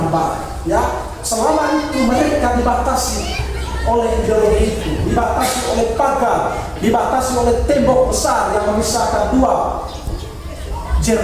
Ya, selama itu mereka dibatasi oleh ideologi itu, dibatasi oleh pagar, dibatasi oleh tembok besar yang memisahkan dua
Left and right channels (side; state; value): both; identical; correlation 1.00